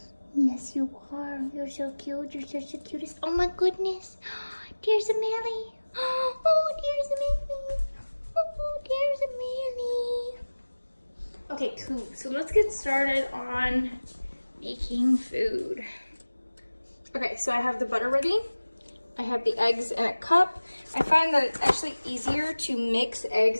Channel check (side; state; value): both; inverted; correlation -1.00